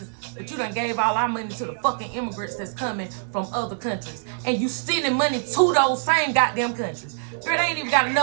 But you done gave all our money to the fucking immigrants that's coming from other countries, and you sending money to those same goddamn countries. Girl, they ain't even got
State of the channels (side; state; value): left; silent; 62 dB below the other